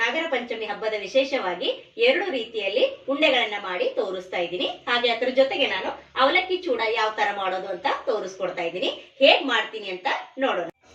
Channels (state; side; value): identical; both; correlation 1.00